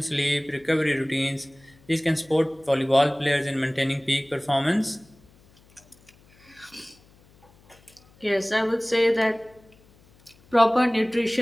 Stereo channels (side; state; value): left; noise; hum, 29 dB below the sound